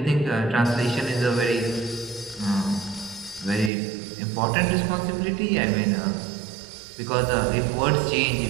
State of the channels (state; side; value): drops out; left; at 3.7 s